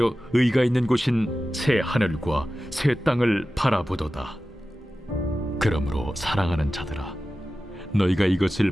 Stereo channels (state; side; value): normal; both; correlation 0.94